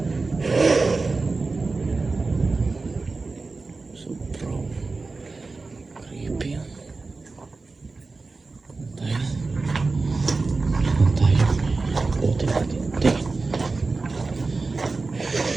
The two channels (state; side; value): quieter; left; 3.8 dB